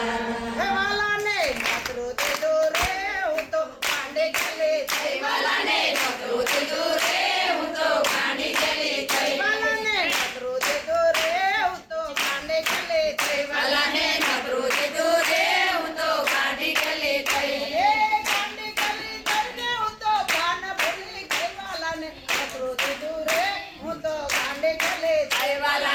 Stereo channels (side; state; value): both; identical; correlation 1.00